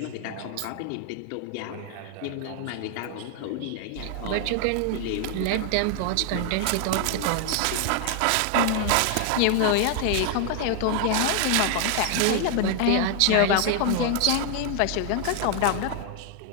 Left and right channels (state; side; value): different; both; correlation 0.00